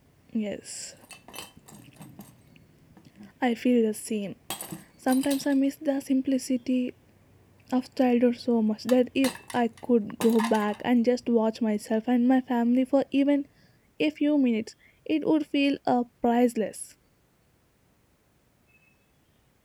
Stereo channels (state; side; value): identical; both; correlation 1.00